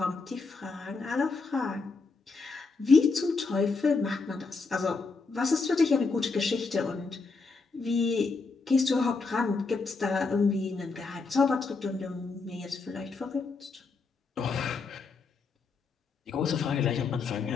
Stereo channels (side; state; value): right; quieter; 4.3 dB